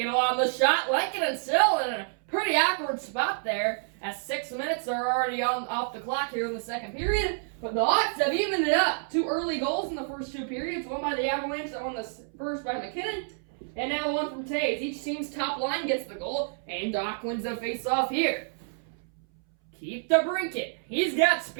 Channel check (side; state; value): left; silent; 59 dB below the other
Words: a lot of the shot. Lankinen still in a pretty awkward spot there, as 6 minutes are already off the clock here in the second period. But the Hawks have evened it up. 2 early goals in the first 2 periods. One by the Avalanche, that one the first by MacKinnon. And now the one from Taze. Each team's top line gets the goal, and Doc wins the face-off here. Keep DeBrincat. He's got